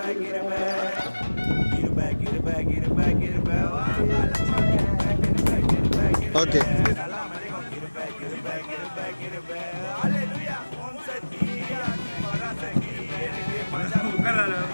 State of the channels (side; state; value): both; inverted; correlation -1.00